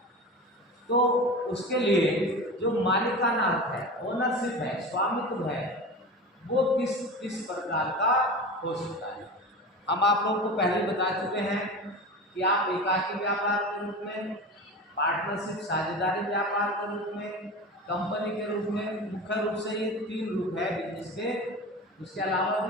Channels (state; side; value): normal; both; correlation 0.30